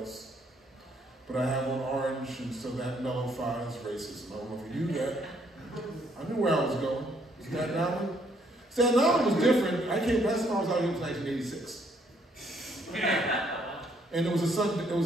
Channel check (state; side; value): normal; both; correlation 0.68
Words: But I have on orange, and so that nullifies racism. I don't know if you knew that. I knew where I was going. Staten Island? Staten Island was different. Last time I was out here was 1986. And it was a